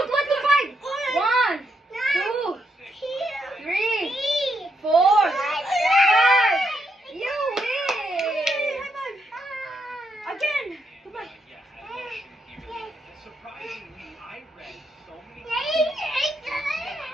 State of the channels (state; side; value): normal; both; correlation 0.79